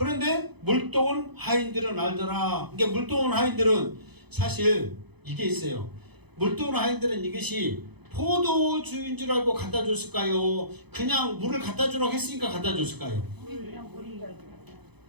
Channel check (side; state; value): left; late; 0.98 ms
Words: 물떠온 하인들은 알더라. 그러니까 물떠온 하인들은 사실 이게 있어요. 물떠온 하인들은 이것이 포도주인 줄 알고 갖다 줬을까요? 그냥 물을 갖다 주라고 했으니까 갖다 줬을까요? 그냥 물인 줄 알고.